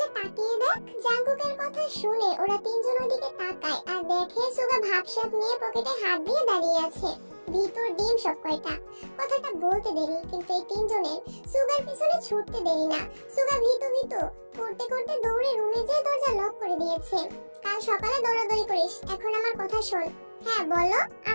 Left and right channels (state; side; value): inverted; both; correlation -1.00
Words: তাকিয়ে দেখ। জাঙ্কুকের কথা শুনে ওরা তিনজন ওদিকে তাকায় আর দেখে সুগা ভাবসাব নিয়ে পকেটে হাত দিয়ে দাঁড়িয়ে আছে। ভিতর ডিম সব কয়টা। কথাটা বলতে দেরি, কিন্তু এই তিনজনের সুগার পিছনে ছুটতে দেরি না। সুগা ভীতু ভীতু করতে করতে দৌড়ে রুমে যেয়ে দরজা লক করে দিয়েছে। কাল সকালে দৌড়াদৌড়ি করিস, এখন আমার কথা শোন। হ্যাঁ বলো।